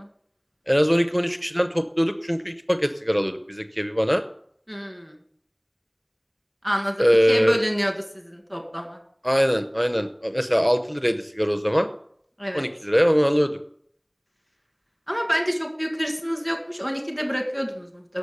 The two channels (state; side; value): identical; both; correlation 1.00